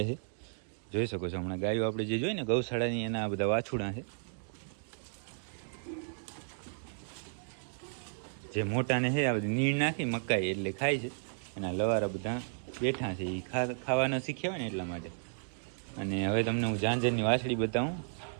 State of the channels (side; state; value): left; silent; digital silence